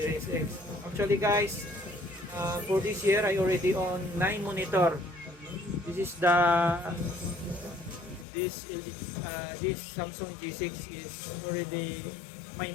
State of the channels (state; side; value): drops out; right; at 8.2 s